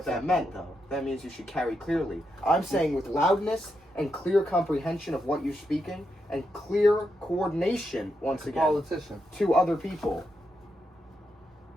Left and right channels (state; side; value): normal; both; correlation 0.84